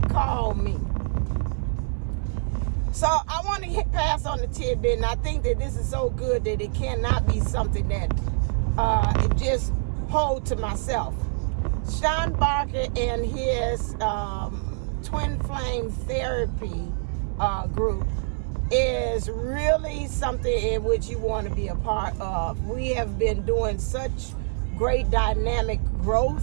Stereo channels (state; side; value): silent; left; digital silence